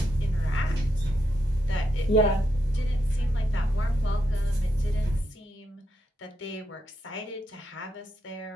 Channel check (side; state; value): both; normal; correlation 0.82